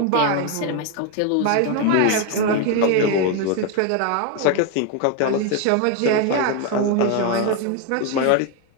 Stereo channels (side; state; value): both; different; correlation 0.01